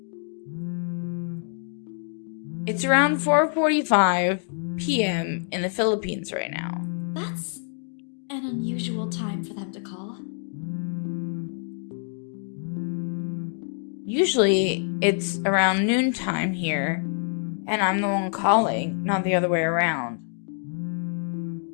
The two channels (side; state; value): right; silent; 61 dB below the other